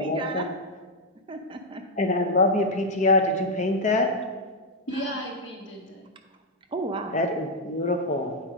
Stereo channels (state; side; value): normal; both; correlation 0.00